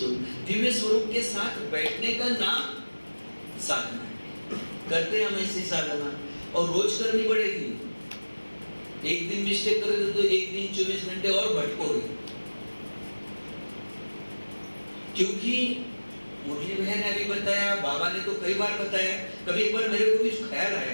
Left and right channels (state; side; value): inverted; both; correlation -1.00